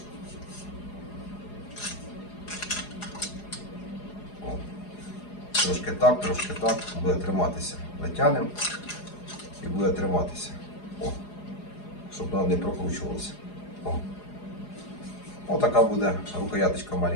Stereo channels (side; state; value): right; late; 4.8 ms